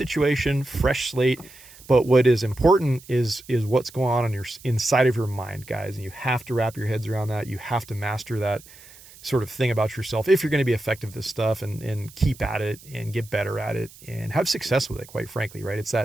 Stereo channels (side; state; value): right; noise; hiss, 21 dB below the sound